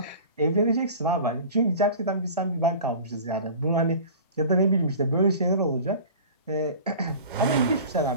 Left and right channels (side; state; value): both; inverted; correlation -0.39